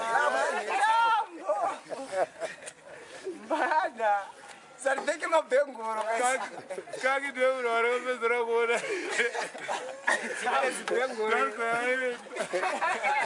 Bana. Sarveke mabengoro. Kaki deu ora bezra gora. Bengoro.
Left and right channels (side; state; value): both; identical; correlation 1.00